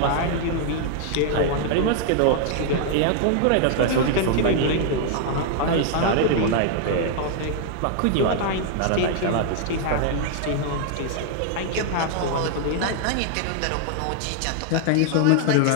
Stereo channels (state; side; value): different; both; correlation 0.00